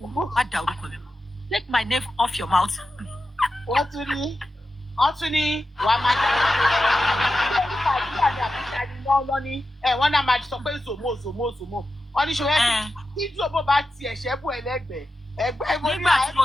má dá orúkọ mi. Take my name off your mouth. Wọ́n tún ní wàá máa dá wọ́n náà máa sọ pé zòmó. Wọ́n ní ṣòwò tí zòmó bá ti ẹ̀ṣẹ́ bù ẹlẹ́gbẹ̀ẹ́ ẹgbẹ́ mo ní àyẹ̀wò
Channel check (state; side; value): normal; both; correlation 0.91